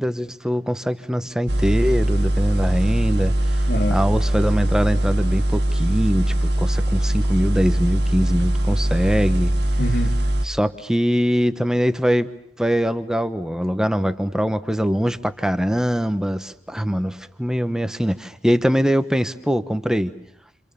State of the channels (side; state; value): both; normal; correlation 0.97